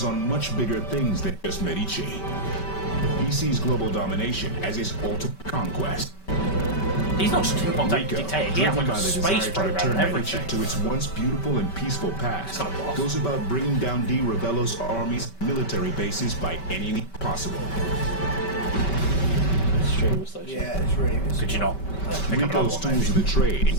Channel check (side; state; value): right; late; 5.2 ms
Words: on much bigger things than just Medici. He sees global domination as his ultimate conquest. He's not just a tin box Rico, dictator, he has driven like by a the space desire to program return and Medici everything. to its once beautiful and peaceful past, Kind of boss. goes about bringing down Di Ravello's army's military bases by any means possible. Stream station. Yeah, it's really good. Could you not pick up another Rico's one, tools maybe? of the trade